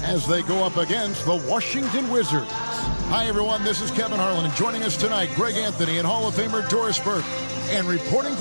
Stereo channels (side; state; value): both; inverted; correlation -1.00